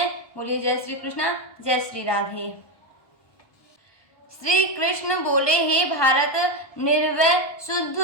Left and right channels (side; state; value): right; late; 1.2 ms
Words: बोलिए जय श्री कृष्णा, जय श्री राधे। श्री कृष्ण बोले, हे भारत, निर्वय शुद्ध